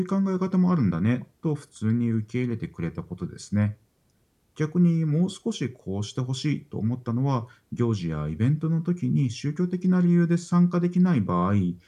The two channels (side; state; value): both; identical; correlation 1.00